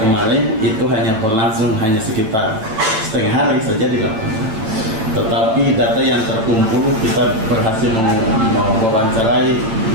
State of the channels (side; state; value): left; late; 9.0 ms